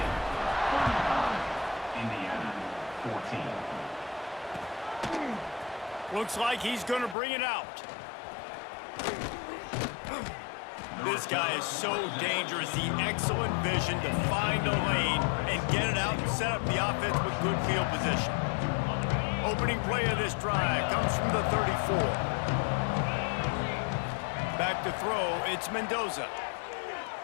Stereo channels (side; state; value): right; drops out; at 7.2 s